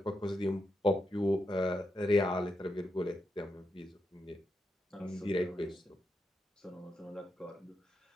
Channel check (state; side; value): normal; both; correlation 0.85